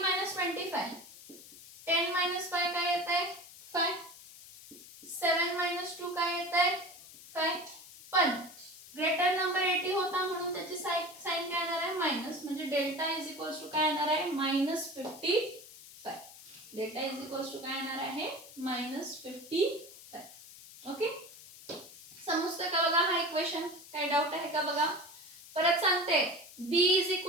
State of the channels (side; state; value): left; noise; hiss, 18 dB below the sound